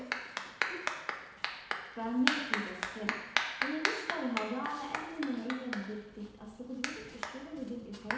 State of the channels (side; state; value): both; identical; correlation 1.00